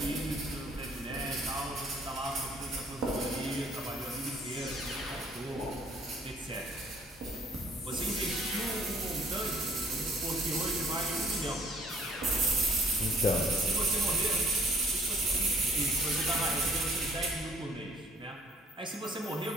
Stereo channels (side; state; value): both; normal; correlation 0.57